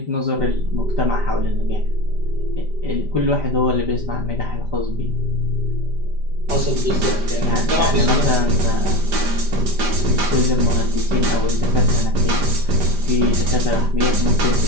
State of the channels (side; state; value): left; late; 5.0 ms